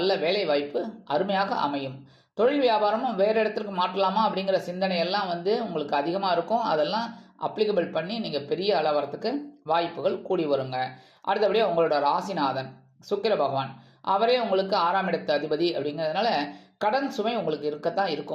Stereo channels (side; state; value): both; identical; correlation 1.00